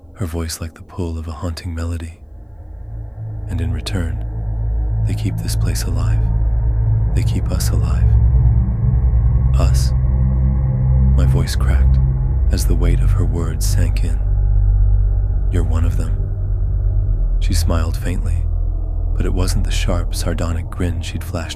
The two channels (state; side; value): identical; both; correlation 1.00